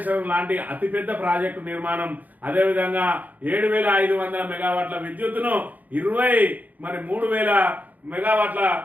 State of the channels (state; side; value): late; left; 0.080 ms